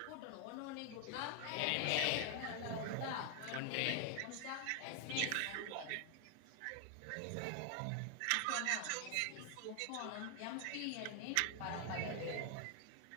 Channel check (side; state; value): both; different; correlation 0.00